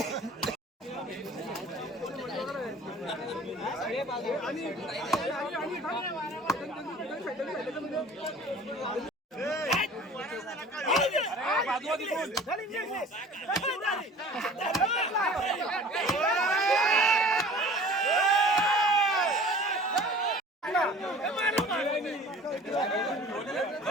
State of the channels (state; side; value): normal; both; correlation 0.45